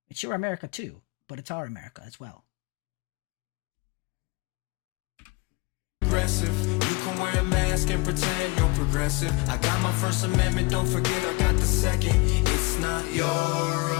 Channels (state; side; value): quieter; right; 26.2 dB